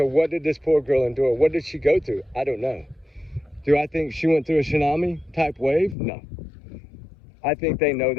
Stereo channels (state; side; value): drops out; right; at 6.0 s